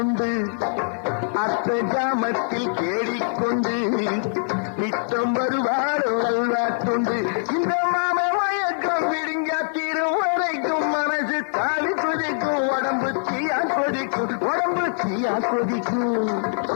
அர்த்த ஜாமத்தில் தேடிக்கொண்டு நித்தம் வருவாளோ அல்வா துண்டு இந்த மாம மயக்கம் விடுங்கா தீரும் வரைக்கும் மனசு தாலி கொதிக்கும் உடம்பு தீயா கொதிக்கும்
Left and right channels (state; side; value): silent; right; 63 dB below the other